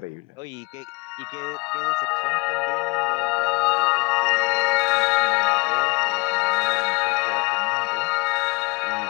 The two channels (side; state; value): right; quieter; 28.3 dB